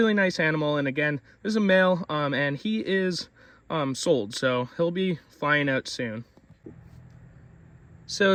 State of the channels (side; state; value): both; identical; correlation 1.00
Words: nice animal. And again, this is a male, and he is sold, so he'll be flying out soon. So